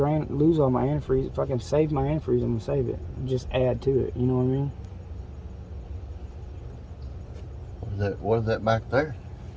lose all my antifreeze. If I can save my antifreeze, I'm gonna save it and just add to it. You know what I mean? What is that back there?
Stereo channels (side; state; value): both; identical; correlation 1.00